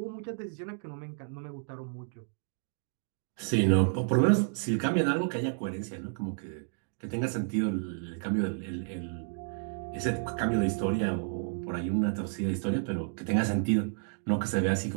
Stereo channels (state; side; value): silent; left; digital silence